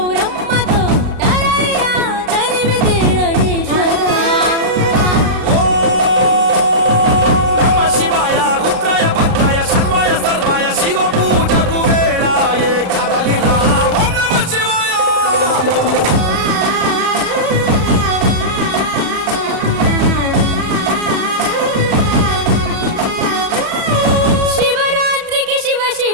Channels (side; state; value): left; late; 33 ms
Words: తరలిరా తరివి తీర ఈశ్వర నమ శివాయ రుద్రాయ భద్రాయ సర్వాయ సర్వాయ శివ పూజకు వేళాయే కదలిరా ఓం నమ శివాయ శివరాత్రికి శివ